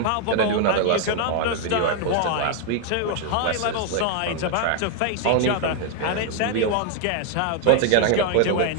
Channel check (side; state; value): both; different; correlation 0.00